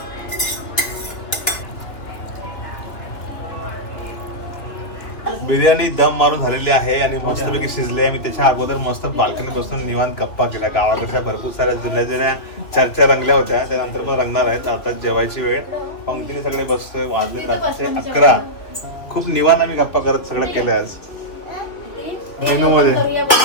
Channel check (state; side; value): late; right; 2.7 ms